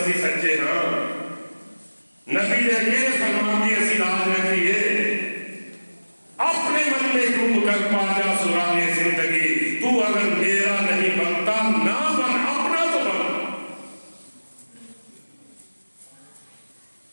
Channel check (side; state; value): both; inverted; correlation -1.00